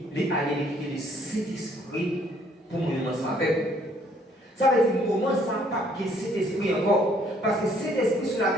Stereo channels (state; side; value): normal; both; correlation 0.63